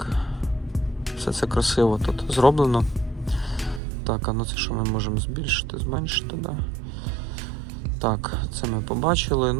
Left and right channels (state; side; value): drops out; left; at 3.8 s